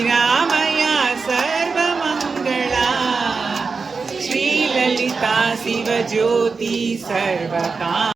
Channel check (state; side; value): quieter; left; 4.7 dB